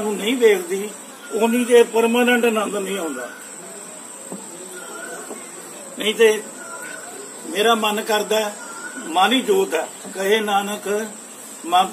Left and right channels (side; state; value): both; identical; correlation 1.00